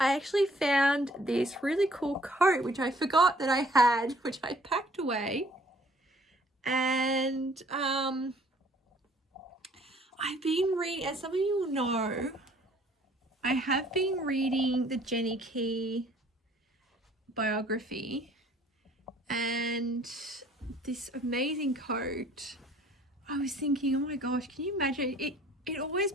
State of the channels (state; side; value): normal; both; correlation 0.58